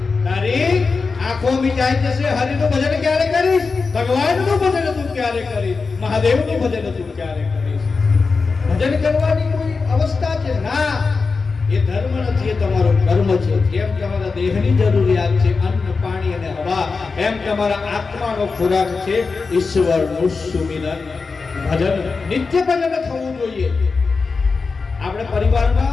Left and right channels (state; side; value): quieter; right; 4.5 dB